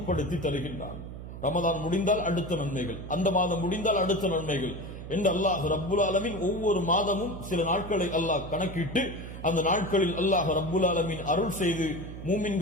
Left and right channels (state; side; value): noise; right; hum, 11 dB below the sound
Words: தருகின்றான். ரமதான் முடிந்தால் அடுத்த நன்மைகள், அந்த மாதம் முடிந்தால் அடுத்த நன்மைகள் என்று அல்லாஹ் ரப்புல் ஆலமீன் ஒவ்வொரு மாதமும் சில நாட்களை அல்லாஹ் கணக்கிட்டு அந்த நாட்களில் அல்லாஹ் ரப்புல் ஆலமீன் அருள் செய்து